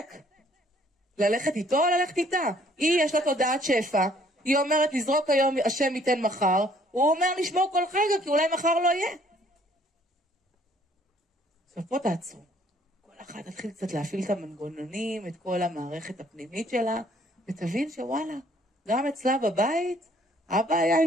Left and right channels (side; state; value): both; normal; correlation 0.61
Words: ללכת איתו או ללכת איתה? היא יש לה תודעת שפע, היא אומרת לזרוק היום השם ייתן מחר, הוא אומר לשמור כל רגע כי אולי מחר לא יהיה. עכשיו פה תעצרו. כל אחד תתחיל קצת להפעיל את המנגנונים, את כל המערכת הפנימית שלה, ותבין שוואלה, גם אצלה בבית, אבא היה